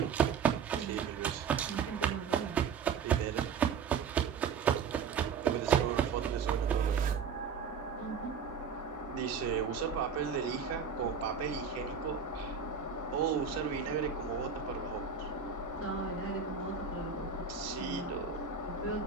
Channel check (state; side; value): quieter; left; 6.3 dB